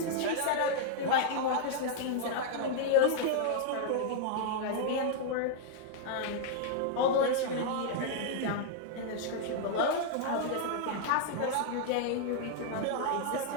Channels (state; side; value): different; both; correlation 0.00